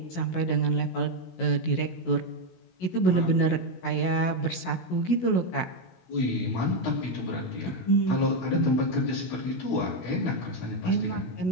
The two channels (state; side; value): late; right; 16 ms